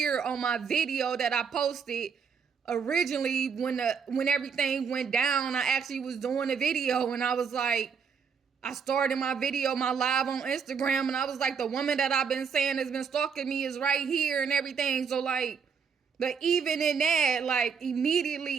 on my video that I posted originally when everything went down. I actually was doing a video, and I was like, I started my video, my live on Instagram, and I was like, the woman that I've been saying has been stalking me is right here and everything. So, like, but even in that, like,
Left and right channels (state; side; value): quieter; left; 6.3 dB